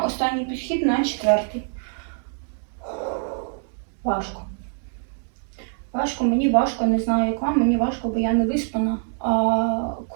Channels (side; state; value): left; silent; 62 dB below the other